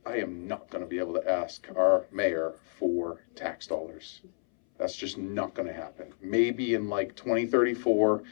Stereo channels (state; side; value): silent; right; 58 dB below the other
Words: I am not going to be able to ask our mayor for tax dollars. That's just not going to happen. Maybe in like 2034,